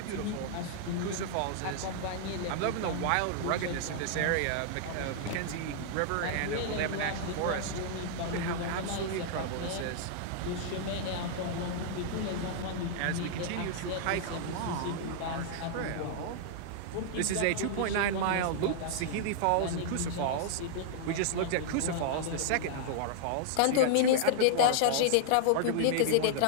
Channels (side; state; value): both; different; correlation -0.01